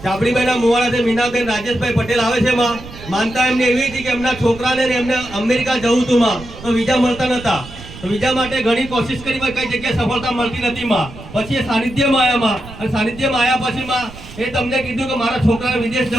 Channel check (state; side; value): noise; right; rumble, 16 dB below the sound